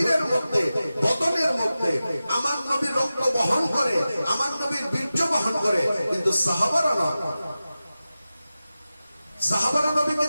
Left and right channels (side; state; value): both; inverted; correlation -0.94